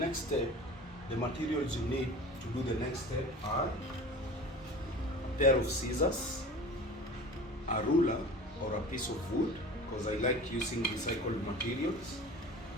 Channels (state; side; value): normal; both; correlation 0.38